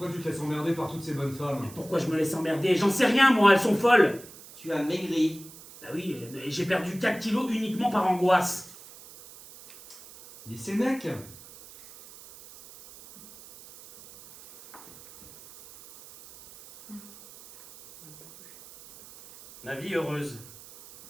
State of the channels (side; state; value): right; noise; hiss, 19 dB below the sound